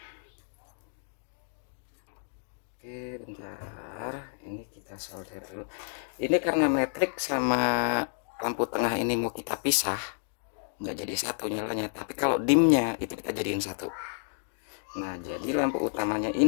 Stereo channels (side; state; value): right; silent; digital silence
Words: Oke, bentar, ini kita solder dulu. Ini karena metrik sama lampu tengah ini mau kita pisah, nggak jadi satu nyalanya. Tapi kalau dimnya itu kita jadiin satu. Nah, jadi lampu utamanya